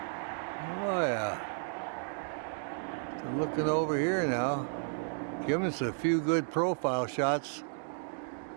yeah. So looking over here now, giving us a few good profile shots.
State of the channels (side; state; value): left; silent; digital silence